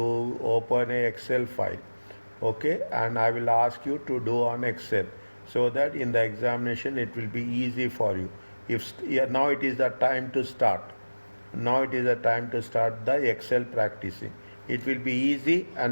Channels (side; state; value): both; inverted; correlation -1.00